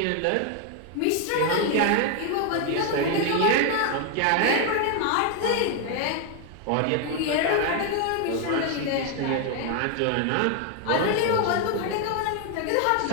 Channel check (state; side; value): different; both; correlation 0.00